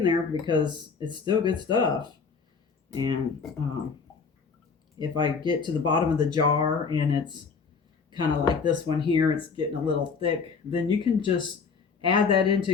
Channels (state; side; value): quieter; right; 5.3 dB